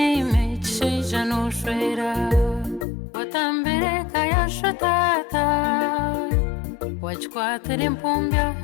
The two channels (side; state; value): right; drops out; at 2.9 s